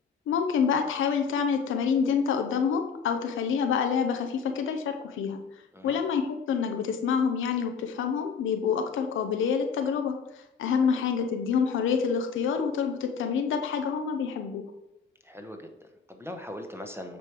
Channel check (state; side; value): quieter; right; 6.2 dB